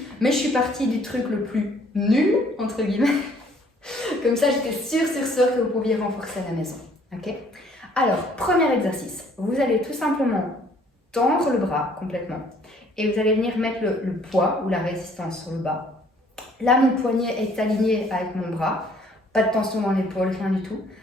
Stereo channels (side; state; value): both; normal; correlation 0.60